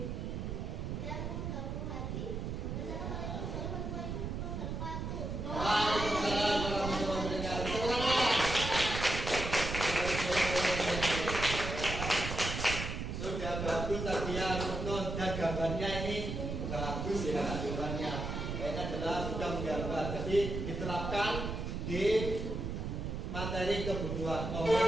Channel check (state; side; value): noise; right; rumble, 4 dB below the sound